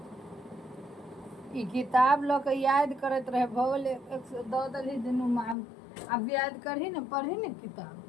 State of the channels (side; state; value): right; drops out; at 5.6 s